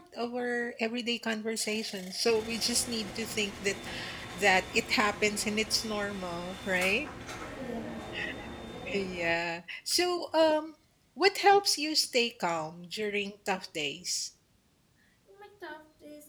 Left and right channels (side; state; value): both; identical; correlation 1.00